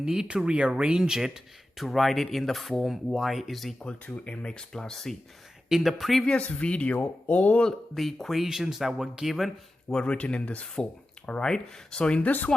to rearrange it to write it in the form y is equal to mx plus c. In the previous video, all the equations that were given were written in this form. All right. So in this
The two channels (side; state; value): both; normal; correlation 0.93